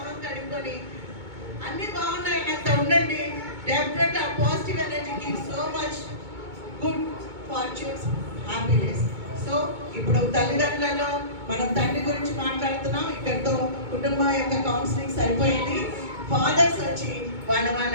కడుక్కొని అన్ని బాగున్నాయన్నంత ఉండండి. డెఫినెట్ ఆ positive energy gives so much good fortunes, happiness. So ఇప్పుడు తల్లిదండ్రులలో మనం తండ్రి గురించి మాట్లాడుతున్నాం. ఇక్కడితో కుటుంబం యొక్క కౌన్సిలింగ్ సరిపోయింది. ఫాదర్స్ వచ్చి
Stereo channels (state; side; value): late; left; 2.2 ms